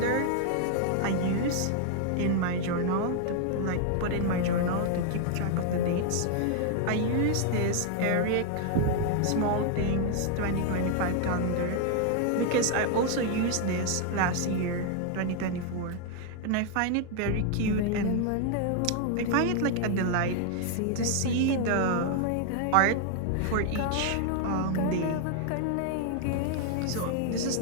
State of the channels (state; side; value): different; both; correlation 0.00